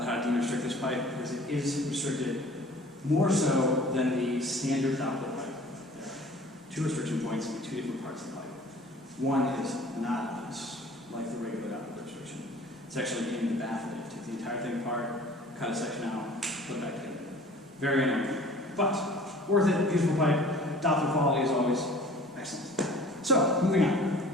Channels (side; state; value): both; normal; correlation 0.48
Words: how to de-restrict this pipe, because it is restricted more so than the standard Doppler pipe. There are two restriction points in two different parts of the pipe. One is not loose, like the regular Doppler restriction. It's actually in the bath of it. Take the entire thing apart, cut a section out, put it back together. Very annoying, but worth it. Beautiful pipe. Doppler quality is always excellent. So, moving